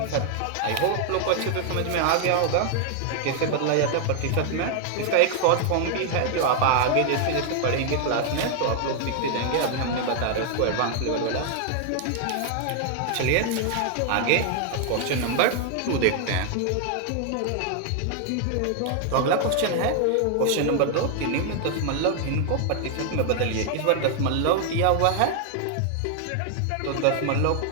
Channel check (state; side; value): different; both; correlation 0.00